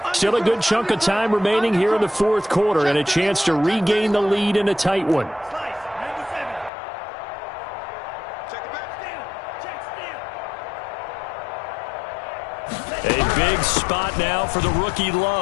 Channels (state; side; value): drops out; right; at 6.7 s